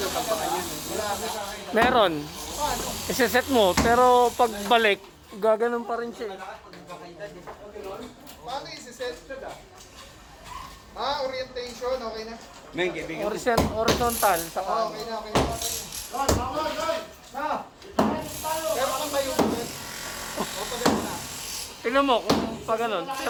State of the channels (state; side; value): identical; both; correlation 1.00